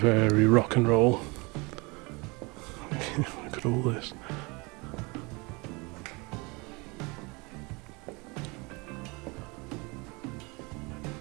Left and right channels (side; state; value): left; quieter; 27.0 dB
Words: rock and roll. Look at all this.